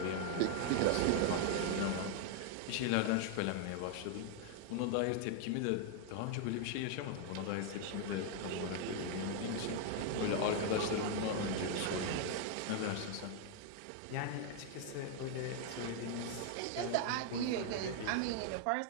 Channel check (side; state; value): both; different; correlation 0.00